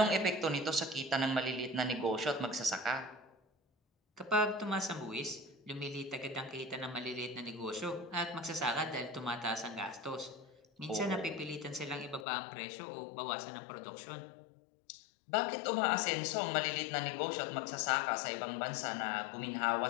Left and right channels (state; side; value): drops out; right; at 12.2 s